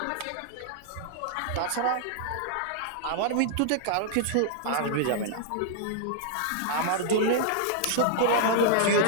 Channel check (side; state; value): both; different; correlation -0.01